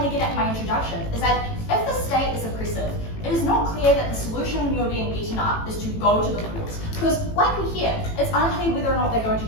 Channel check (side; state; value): right; late; 18 ms